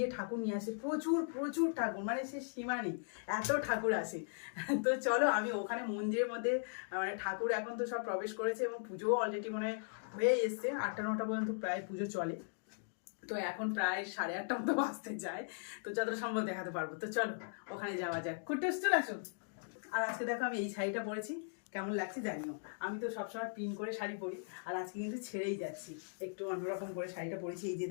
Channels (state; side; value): silent; right; digital silence